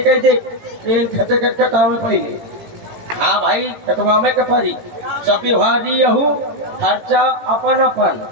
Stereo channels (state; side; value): late; left; 18 ms